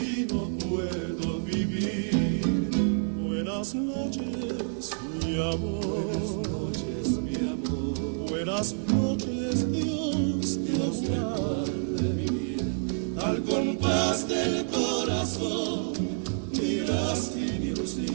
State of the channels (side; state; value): left; silent; digital silence